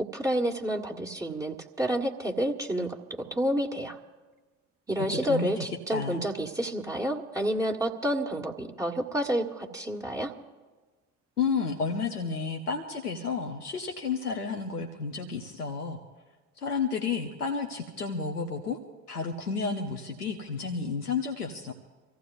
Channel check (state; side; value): normal; both; correlation 0.39